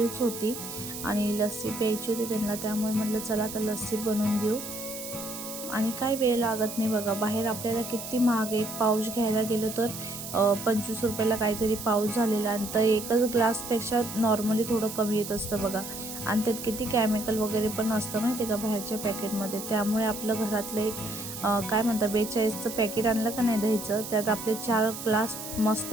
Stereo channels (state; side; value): noise; right; hiss, 9 dB below the sound